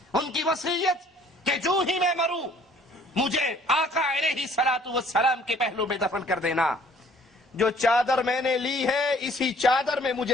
ان کی وصیت کہ جو ہی میں مروں مجھے آقا علیہ الصلوۃ والسلام کے پہلو میں دفن کر دینا. جو چادر میں نے لی ہے اسی چادر میں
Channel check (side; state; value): both; normal; correlation 0.57